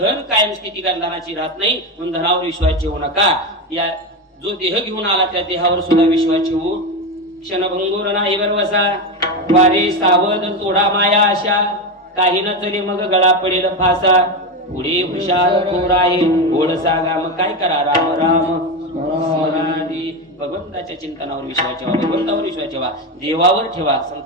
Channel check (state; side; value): normal; both; correlation 0.15